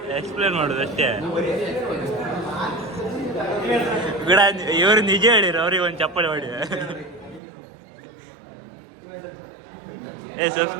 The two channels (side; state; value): left; drops out; at 7.4 s